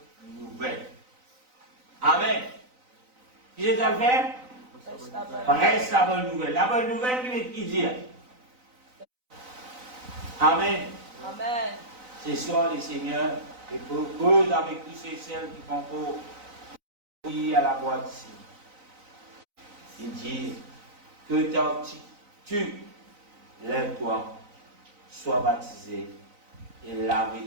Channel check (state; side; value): late; left; 3.9 ms